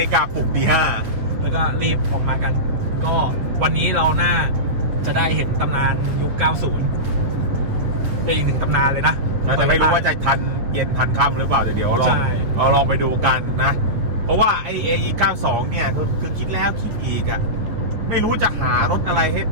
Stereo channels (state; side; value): late; left; 8.5 ms